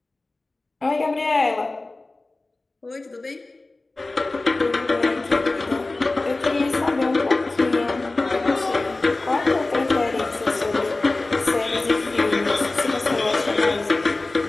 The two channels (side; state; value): right; quieter; 3.1 dB